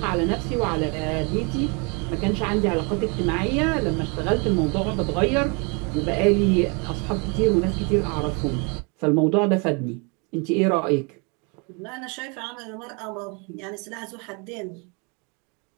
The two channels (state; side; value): quieter; left; 32.8 dB